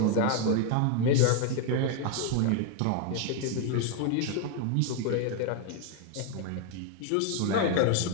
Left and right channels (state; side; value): different; both; correlation 0.01